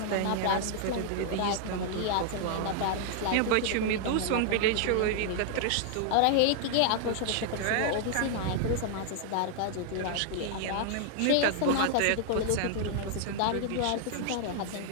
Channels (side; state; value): both; different; correlation 0.00